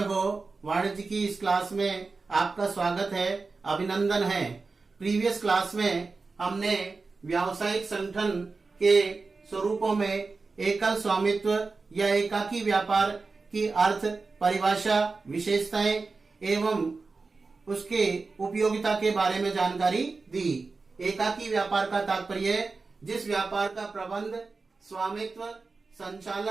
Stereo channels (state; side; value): quieter; left; 4.1 dB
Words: वाणिज्य की इस क्लास में आपका स्वागत है, अभिनंदन है। प्रीवियस क्लास में हमने व्यावसायिक संगठन के स्वरूपों में एकल स्वामित्व या एकाकी व्यापार की अर्थ, परिभाषा, विशेषताएं एवं उसके उपयोगिता के बारे में जानकारी दी। एकाकी व्यापार का तात्पर्य है जिस व्यापार का प्रबंध, स्वामित्व,